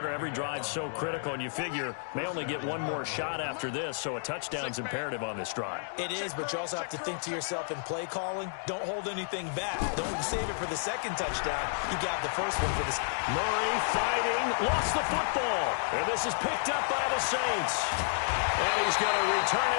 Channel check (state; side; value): silent; right; digital silence